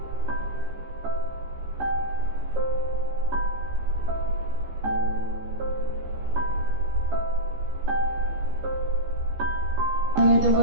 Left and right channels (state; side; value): late; left; 15 ms